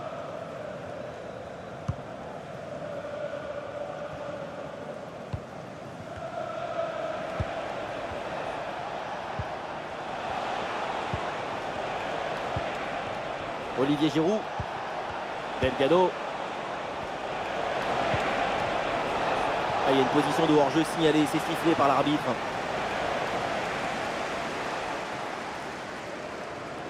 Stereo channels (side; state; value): both; identical; correlation 1.00